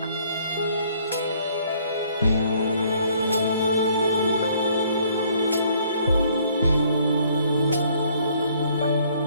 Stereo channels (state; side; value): inverted; both; correlation -0.62